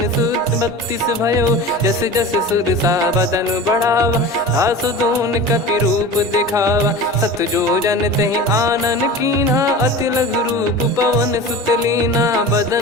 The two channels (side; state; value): both; normal; correlation 0.34